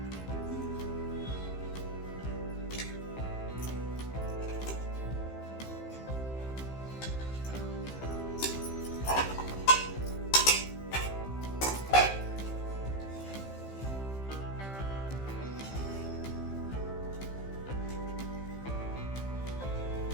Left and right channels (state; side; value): late; right; 15 ms